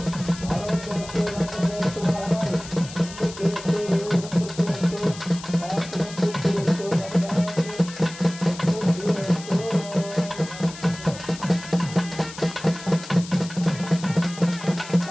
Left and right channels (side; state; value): left; noise; hiss, 14 dB below the sound